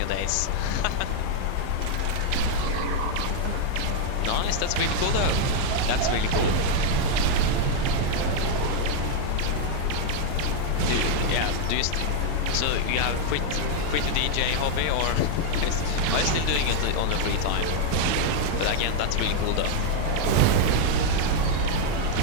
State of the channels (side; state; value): both; different; correlation 0.00